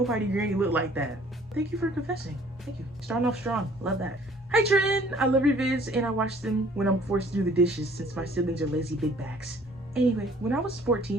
granny look like that. Thank you for confessing. Thank you. Starting off strong. Love that. Hi Trin! I love your vids and I watch them when I'm forced to do the dishes since my siblings are lazy big backs. Anyway, when I was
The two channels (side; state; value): both; normal; correlation 0.56